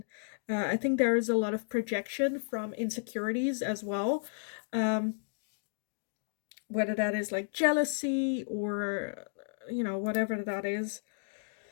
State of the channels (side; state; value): right; silent; digital silence